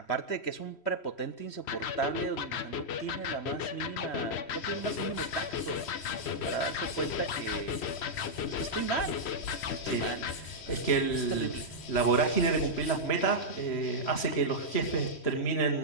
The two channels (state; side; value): late; right; 3.1 ms